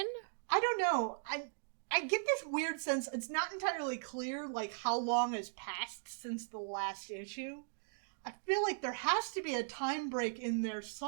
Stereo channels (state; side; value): silent; left; digital silence